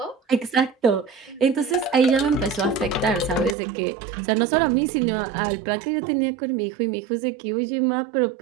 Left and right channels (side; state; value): left; drops out; at 3.6 s